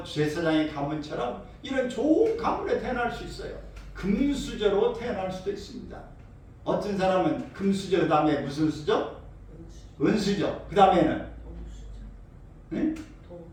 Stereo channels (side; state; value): both; identical; correlation 1.00